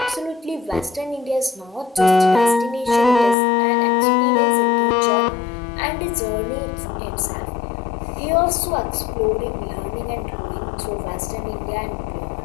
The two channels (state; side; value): drops out; right; at 3.4 s